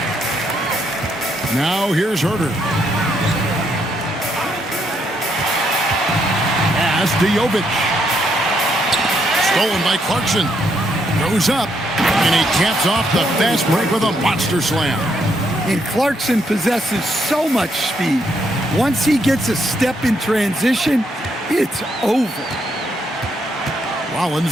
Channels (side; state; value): both; normal; correlation 0.75